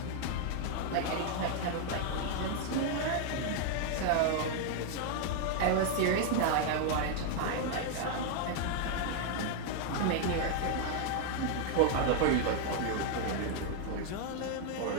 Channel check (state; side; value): different; both; correlation 0.00